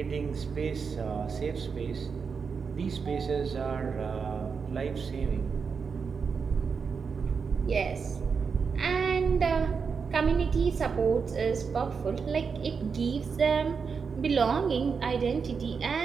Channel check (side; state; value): left; quieter; 5.7 dB